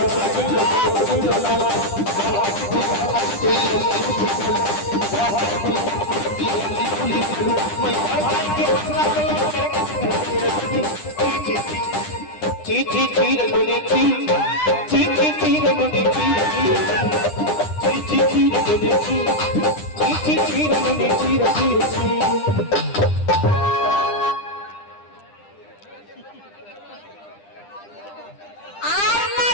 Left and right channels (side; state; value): right; late; 9.9 ms